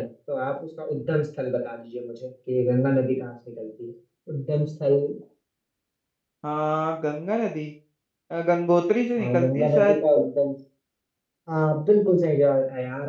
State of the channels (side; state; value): both; identical; correlation 1.00